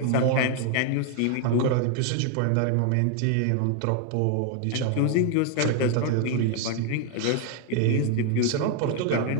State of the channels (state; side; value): different; both; correlation 0.00